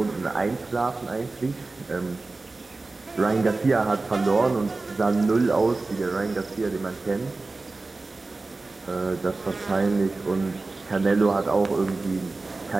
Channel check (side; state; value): left; quieter; 3.5 dB